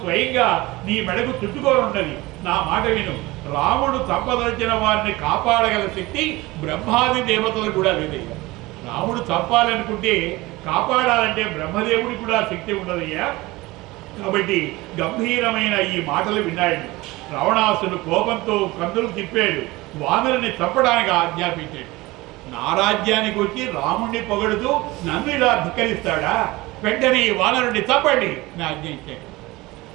స్వయంగా నీ మెడకు చుట్టుకొని ఉన్నది. నా మాట విను. రాముడు చంపదలిచిన వారిని కాపాడగల శక్తి బ్రహ్మాది దేవతలు కూడా లేదయ్యా. రాముడు చంపాలనుకుంటే కాపాడాలంటే బ్రహ్మదేవుడికి కూడా శక్తి ఉండదయ్యా. కాబట్టి గంభీరమైన ఈ మాటలు విన్నాడు. రావణాసుడు కోపంతో కందులు తిప్పాడు, వానరుని చంపడానికి ఆజ్ఞాపించాడు. నా రాజ్యానికి వచ్చి రాముణ్ణి పొగడుతూ నన్ను ఇలా ధిక్కరిస్తాడా? వెంటనే ఈ వానరుని చంపండి నా ఆజ్ఞ ఇచ్చాడు.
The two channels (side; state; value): left; quieter; 20.6 dB